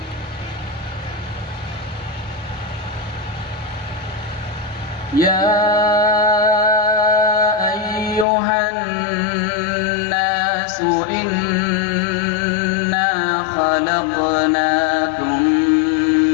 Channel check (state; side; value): drops out; right; at 8.2 s